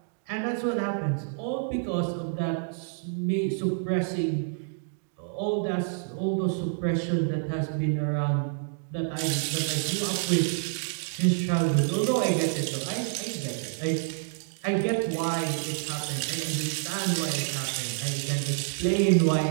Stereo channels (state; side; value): silent; left; digital silence